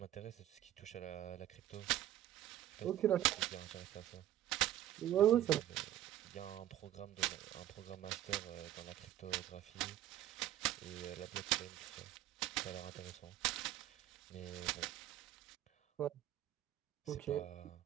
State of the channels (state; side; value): quieter; left; 12.7 dB